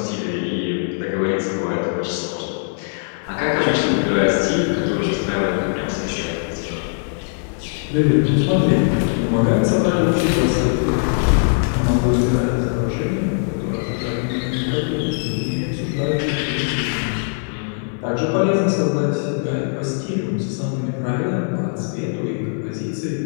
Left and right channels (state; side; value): silent; right; 60 dB below the other